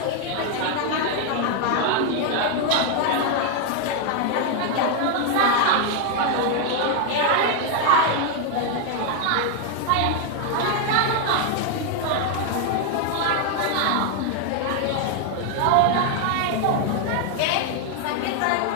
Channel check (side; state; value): both; different; correlation 0.01